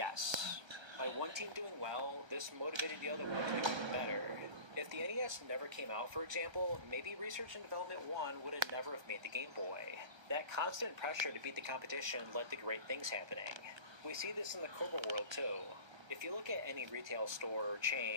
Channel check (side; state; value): left; late; 1.3 ms